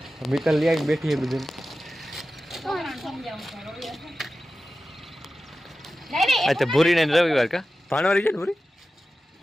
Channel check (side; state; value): both; normal; correlation 0.94